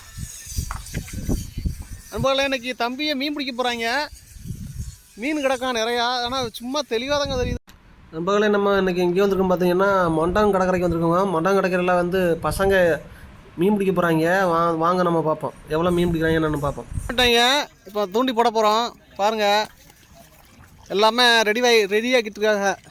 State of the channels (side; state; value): both; identical; correlation 1.00